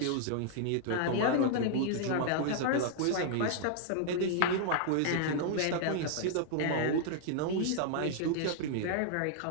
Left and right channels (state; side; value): different; both; correlation -0.01